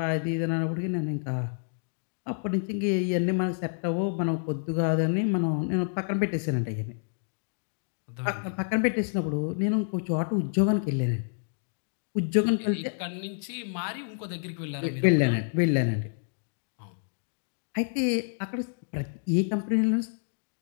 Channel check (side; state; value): right; silent; digital silence